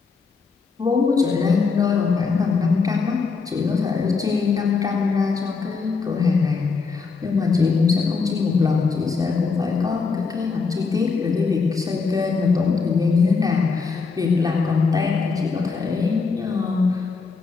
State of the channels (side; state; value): right; quieter; 4.8 dB